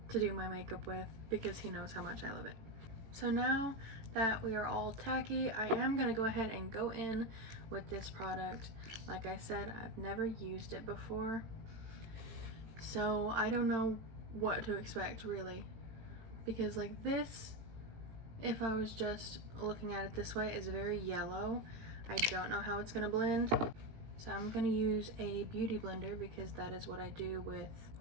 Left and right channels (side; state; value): left; late; 18 ms